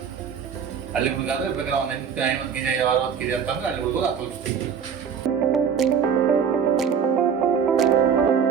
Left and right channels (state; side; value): quieter; left; 7.2 dB